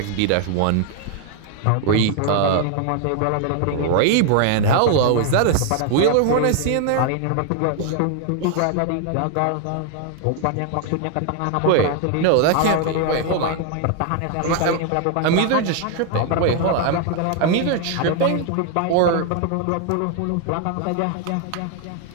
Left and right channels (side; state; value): both; different; correlation 0.00